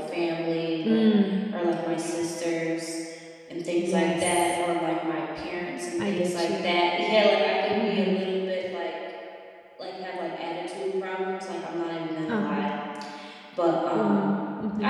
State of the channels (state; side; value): identical; both; correlation 1.00